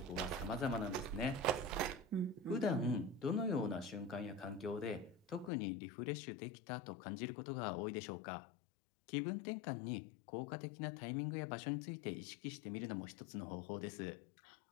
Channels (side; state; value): right; drops out; at 5.5 s